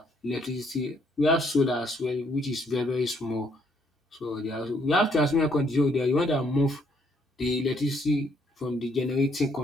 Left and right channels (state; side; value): normal; both; correlation 0.69